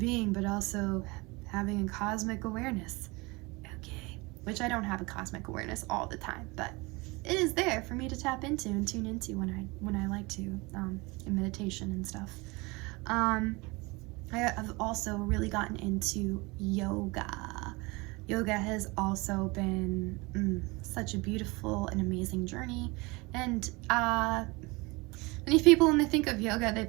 but also having a cosmic awareness. Okay, which I don't have a cosmic awareness all the time, but it is there for me to tap into and tune into when I like to, in meditation and stuff. I have also really gotten into yoga. Yoga has also been such a beautiful and amazing journey. And many people, when they think of yoga, they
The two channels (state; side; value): quieter; left; 25.1 dB